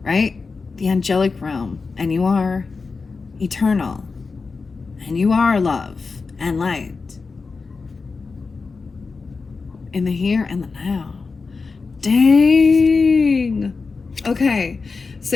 right? The angelic realm, and you are eternal, and you are love and light in the here and the now. Dang. Okay,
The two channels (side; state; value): right; quieter; 4.4 dB